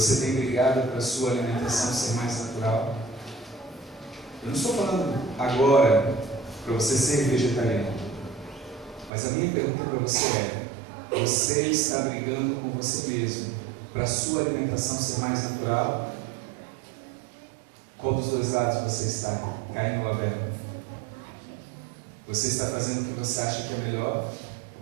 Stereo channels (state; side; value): drops out; left; at 9.1 s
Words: tem brigado para a sua alimentação ser mais natural? Eu não estou falando agora para você ser vegetariano. Mas a minha pergunta para você é: você está brigando com você mesmo para a sua alimentação ser mais natural? Qual dos dois lados você está? Caim ou Abel? Você está fazendo o que você acha que é melhor?